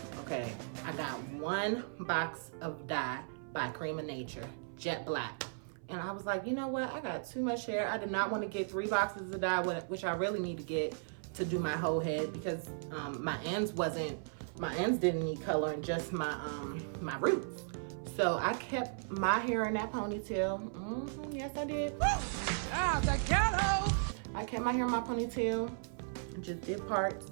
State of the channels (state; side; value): silent; left; 54 dB below the other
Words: Okay, I got one box of dye by Cream of Nature, jet black. And I was like, you know what? I got too much hair. I did not want to get 3 boxes of dye, which I really need to get to do my whole head, because my ends didn't need coloring, just my roots. So I kept my hair in that ponytail. Yes, I did. Ah, the ghetto! I kept my hair in my ponytail. Just did parts.